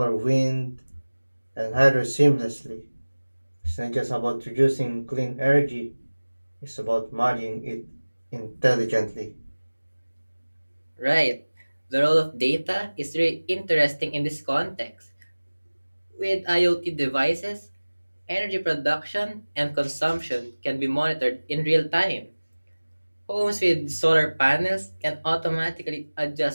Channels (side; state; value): both; inverted; correlation -1.00